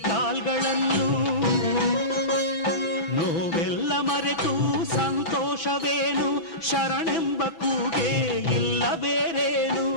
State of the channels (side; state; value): right; late; 6.0 ms